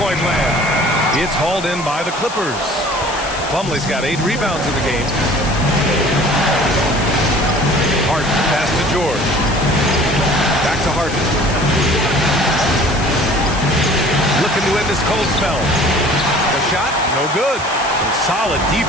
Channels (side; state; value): left; noise; hiss, 13 dB below the sound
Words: land. It's hauled in by the Clippers. Plumlee's got 8 rebounds in the game. Harden, pass to George. Back to Harden. Looking to end this cold spell. The shot, no good. Some solid